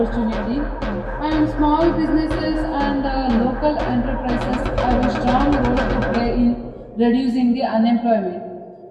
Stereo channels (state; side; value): identical; both; correlation 1.00